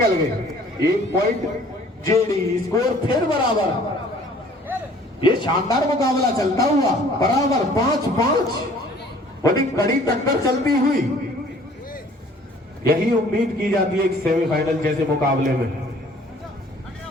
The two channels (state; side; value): normal; both; correlation 0.54